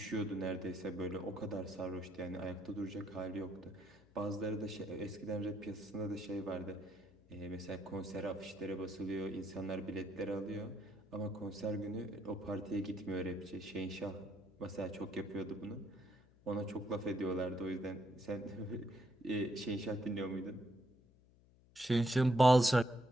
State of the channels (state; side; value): noise; left; hum, 27 dB below the sound